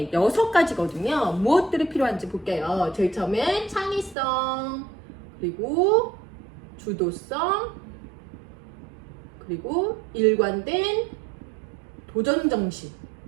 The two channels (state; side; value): drops out; left; at 4.2 s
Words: 6가지거든요. 무엇들이 필요한지 볼게요. 제일 처음엔 창의성, 그리고 주도성, 그리고 일관된 도전정신.